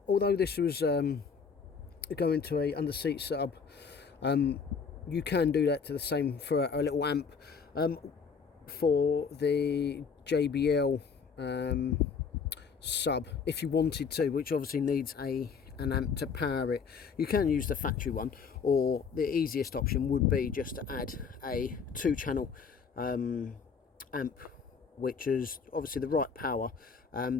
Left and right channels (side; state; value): right; quieter; 5.9 dB